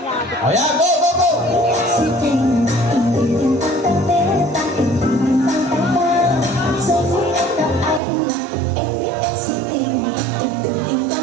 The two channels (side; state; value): left; drops out; at 8.0 s